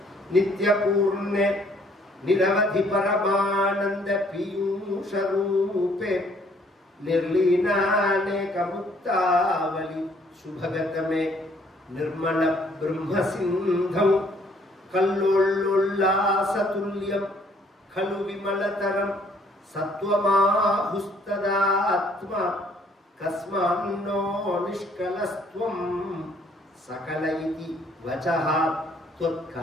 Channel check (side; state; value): both; normal; correlation 0.63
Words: நித்ய பூர்ணே நிரவதி பரமானந்த பீயூஷரூபே நிர்லீனானே கமுக்தாவலி சுபகதமே நிர்மல பிரம்ம சிந்தம் கல்லோள்ளாசதுல்யம் கலு விமலதரம் சத்வமாஹுஸ்ததாத்மா கஸ்மான்னோ நிஷ்கலஸ்த்வம் சகல இதி வசஹ